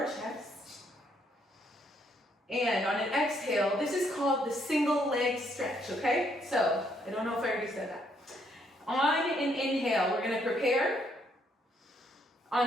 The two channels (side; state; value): both; normal; correlation 0.71